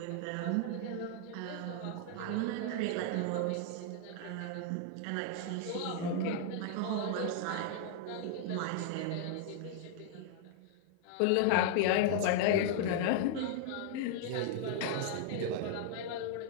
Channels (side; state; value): both; different; correlation 0.00